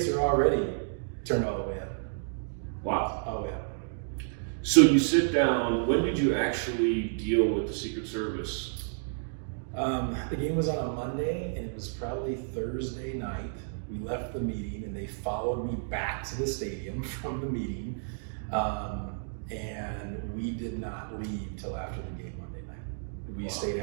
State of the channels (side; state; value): left; silent; digital silence